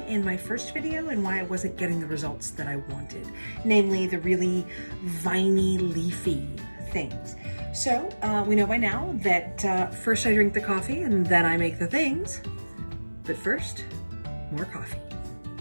in my first video and why I wasn't getting the results that I wanted, namely the really viney, leafy things. So we know by now that first I drink the coffee and then I make the things, but first, more coffee.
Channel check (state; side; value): inverted; both; correlation -1.00